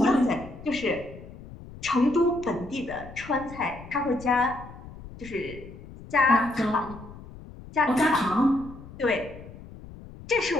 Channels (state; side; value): noise; left; rumble, 16 dB below the sound